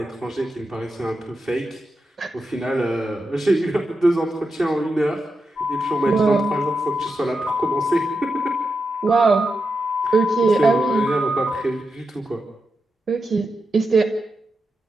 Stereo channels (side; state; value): both; normal; correlation 0.88